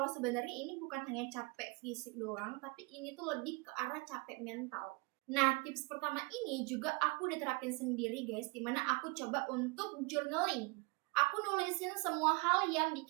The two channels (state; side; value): quieter; left; 28.9 dB